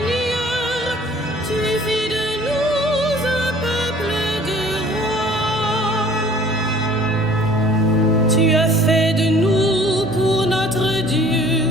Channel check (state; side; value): normal; both; correlation 0.52